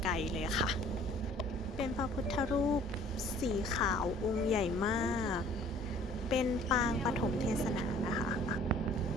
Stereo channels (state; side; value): normal; both; correlation 0.54